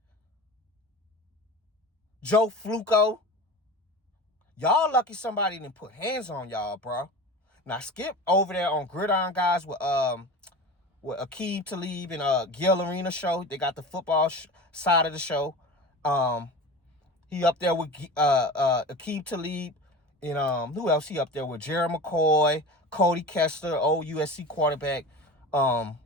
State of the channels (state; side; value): normal; both; correlation 0.32